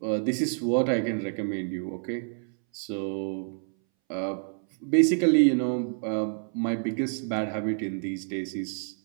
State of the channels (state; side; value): silent; left; 59 dB below the other